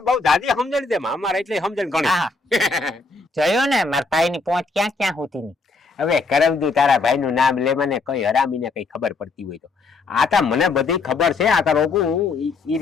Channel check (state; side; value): quieter; right; 3.9 dB